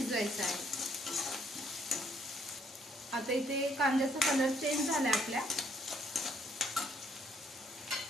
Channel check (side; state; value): both; normal; correlation 0.67